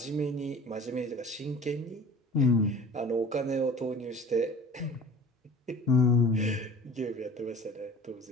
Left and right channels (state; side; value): normal; both; correlation 0.42